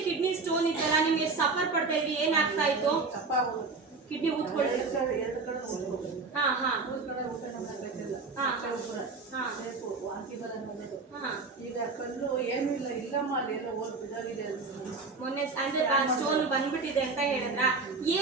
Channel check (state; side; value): quieter; left; 4.1 dB